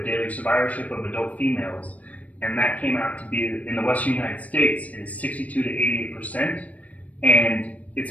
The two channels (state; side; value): late; right; 0.069 ms